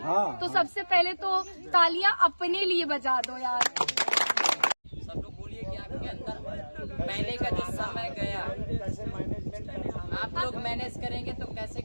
तो सबसे पहले तो तालियां अपने लिए बजा दो यार। सब लोग बोलिए कि आपके अंदर पहले का जो समय गया आप लोग मैनेज करेंगे तो कैसे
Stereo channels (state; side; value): inverted; both; correlation -1.00